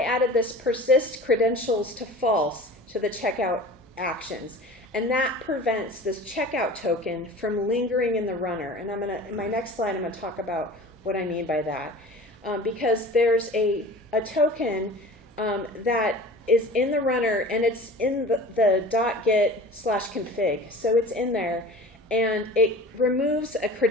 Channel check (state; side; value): normal; both; correlation 0.40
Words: added this persist credentials to false to the checkout actions, and that prevents this checkout token from lingering in the runner. And in my next slide, I'm gonna talk about what I mean by that. Because there's a token that is in the runner, and it's in the .git/config. So it's in there, and it removes a